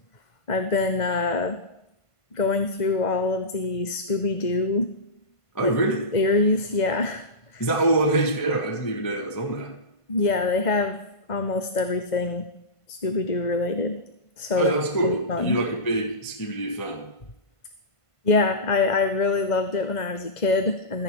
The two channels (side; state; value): right; late; 1.5 ms